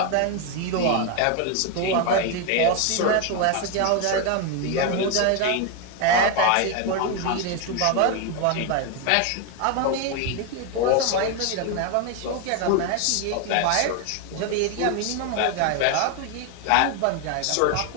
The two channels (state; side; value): different; both; correlation 0.01